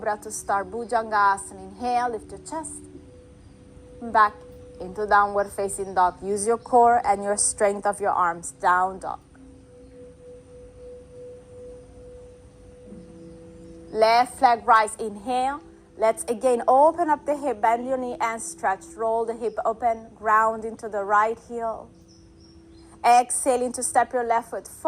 to start. Bhujangasana. Inhale, lift your chest. Back into downward facing dog. Use your core and your strength of your arms. Down dog. Left leg rise. Inhale. Let's again open up the hip. Bend your knee and stretch. Roll the hip open. Ground into the right heel. Exhaling to step your left foot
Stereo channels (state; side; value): identical; both; correlation 1.00